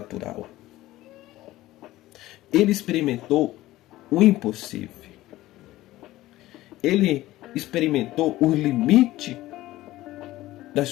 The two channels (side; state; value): right; quieter; 16.4 dB